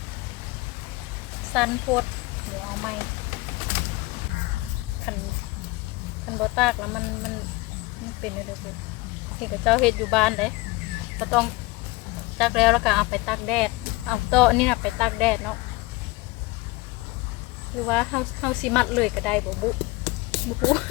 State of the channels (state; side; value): quieter; right; 22.4 dB